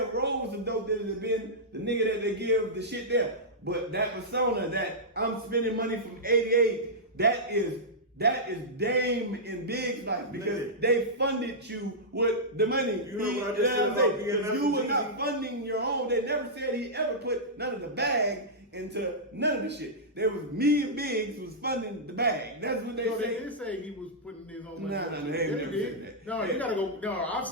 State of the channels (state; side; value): normal; both; correlation -0.12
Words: rolled some dope that has been the nigga that they give the shit there. But that persona that I'm spending money from 88, that is Dame and Big's life because they funded you with the money. You know what I just said about being If you were Jeezy? not funding your own, they never said he ever put none of the bag into none of the shit. There was me and Biggs was funding the bag. That's what they No, they say. did say he was putting his own money. Nah, on they it. ain't They never did. said that. No, you gotta go. No, I've